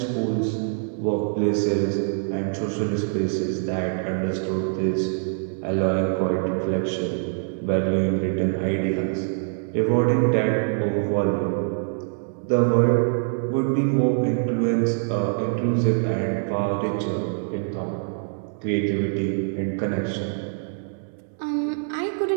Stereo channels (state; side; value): silent; left; digital silence